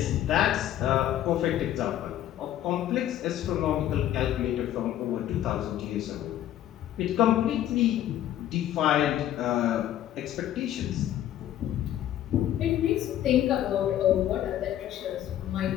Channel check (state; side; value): quieter; right; 12.0 dB